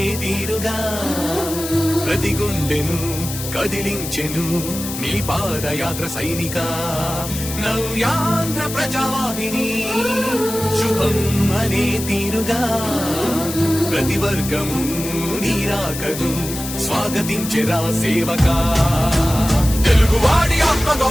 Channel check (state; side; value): noise; left; hiss, 8 dB below the sound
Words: తీరుగా ప్రతి గుండెను కదిలించెను నీ పాదయాత్ర సైనిక నవ్యాంధ్ర ప్రజావాహిని శుభం అనే తీరుగా ప్రతి వర్గము నీరాకను స్వాగతించెరా సేవకా తెలుగువాడి ఆత్మ